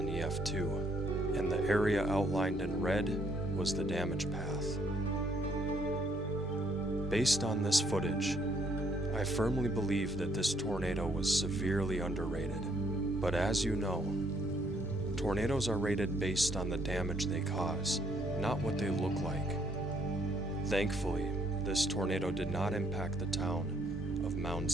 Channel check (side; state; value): both; normal; correlation 0.68